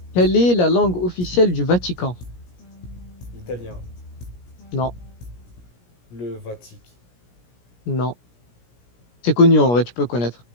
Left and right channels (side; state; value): right; late; 17 ms